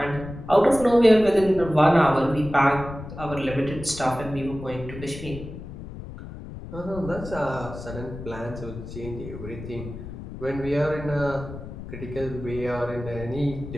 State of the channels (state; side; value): noise; left; rumble, 11 dB below the sound